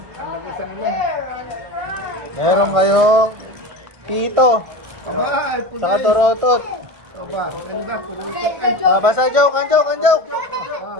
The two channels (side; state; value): left; late; 1.5 ms